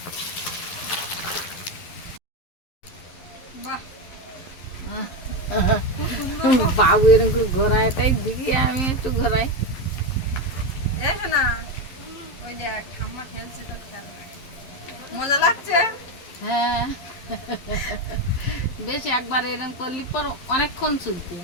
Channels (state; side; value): late; right; 11 ms